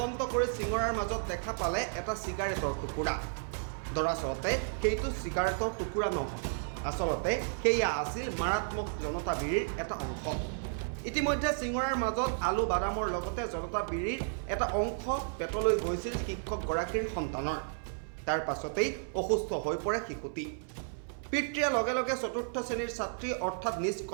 কৰি চিঙৰাৰ মাজত দেখা পালে এটা চিগাৰেটৰ টুকুৰা দৰাচলতে সেইটো চিগাৰেটৰ টুকুৰা নহয় আচলতে সেয়া আছিল মাৰাত্মক জনতা বিৰিৰ এটা অংশ ইতিমধ্যে চিঙৰাৰ মাজত আলু বাদামৰ লগতে জনতা বিৰিৰ এটা অংশ পেটলৈ গৈছিল শিক্ষকগৰাকীৰ সন্তানৰ তাৰ পাছতেই অসুস্থ হৈ পৰে শিশুটি পিতৃয়ে লগে লগে চতুৰ্থ শ্ৰেণীৰ ছাত্ৰী অৰ্থাৎ নিজ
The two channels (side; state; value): left; silent; 56 dB below the other